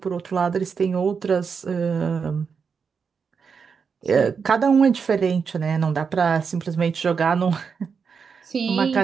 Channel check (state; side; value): quieter; left; 5.9 dB